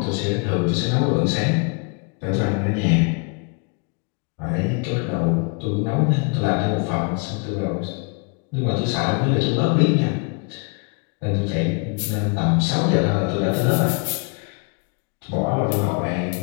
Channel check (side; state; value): right; quieter; 35.0 dB